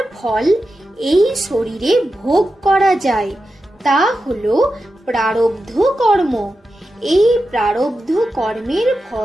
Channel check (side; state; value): both; normal; correlation 0.90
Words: ফল এই শরীরে ভোগ করা যায়। তা হলো প্রারব্ধ কর্ম। এই প্রারব্ধ কর্মের